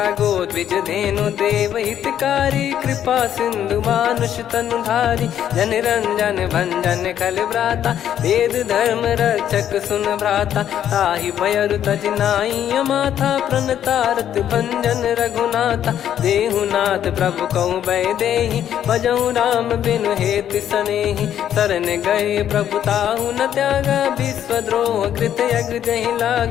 गोद्विज धेनु देव हितकारी कृपा सिंधु मानुष तनुधारी। जन रंजन भंजन खल भ्राता वेद धर्म रक्षक सुन भ्राता। ताहि भयरु तज नाई माथा प्रणतारत भंजन रघुनाथा। देहुनाथ प्रभु कहु भय देहि भजहु राम बिनु हेतु सनेहि। शरण गए प्रभु ताहु न त्यागा विश्वद्रोह कृत यज्ञ जहि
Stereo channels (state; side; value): quieter; right; 10.2 dB